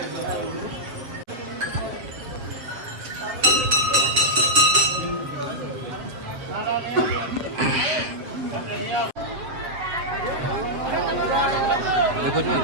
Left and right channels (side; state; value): left; late; 7.5 ms